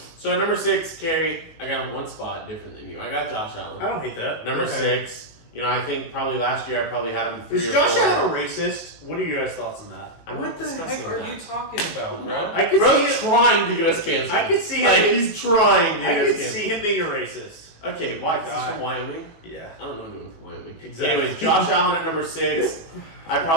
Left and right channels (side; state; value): right; late; 19 ms